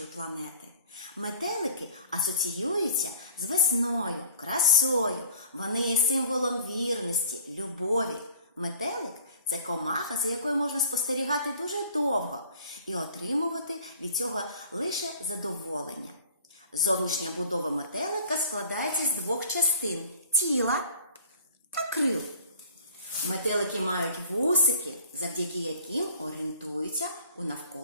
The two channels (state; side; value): inverted; both; correlation -0.49